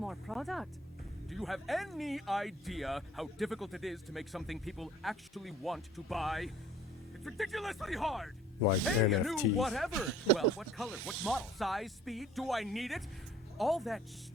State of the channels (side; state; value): both; normal; correlation 0.52